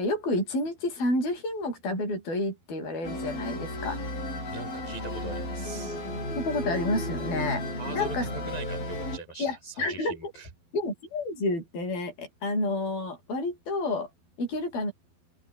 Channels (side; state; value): right; late; 12 ms